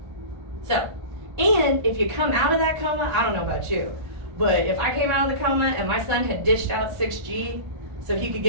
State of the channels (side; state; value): left; late; 1.4 ms